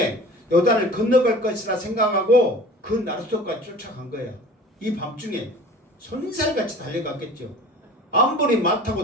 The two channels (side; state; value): both; normal; correlation 0.42